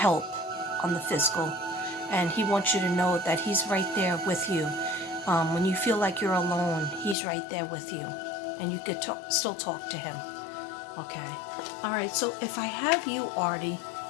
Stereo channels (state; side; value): drops out; right; at 7.2 s